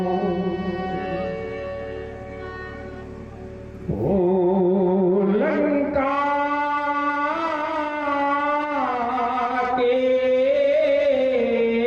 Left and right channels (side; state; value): both; identical; correlation 1.00